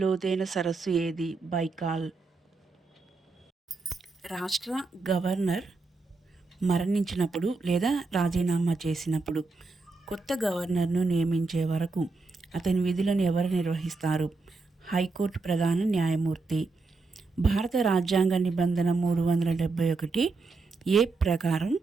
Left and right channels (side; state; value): left; quieter; 3.9 dB